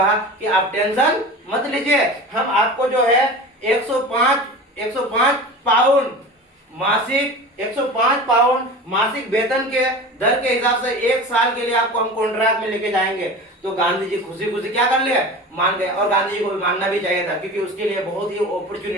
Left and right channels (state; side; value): normal; both; correlation 0.34